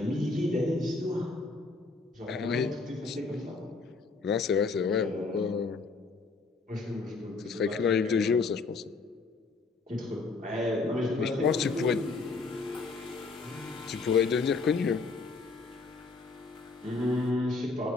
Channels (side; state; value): right; quieter; 4.1 dB